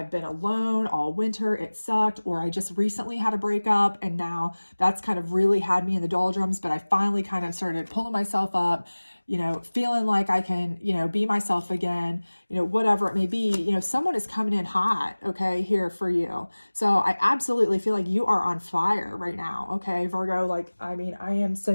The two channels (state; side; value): inverted; both; correlation -1.00